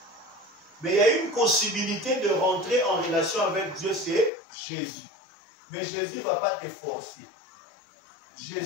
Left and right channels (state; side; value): drops out; right; at 4.3 s